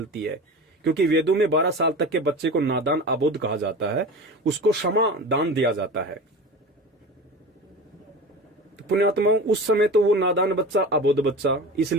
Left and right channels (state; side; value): normal; both; correlation 0.32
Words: है। क्योंकि वेदों में 12 साल तक के बच्चे को नादान अबोध कहा जाता है, उसको क्षमा दान दिया जाता है। तो पुण्यात्माओं, उस समय तो वो नादान बच्चा, अबोध बच्चा,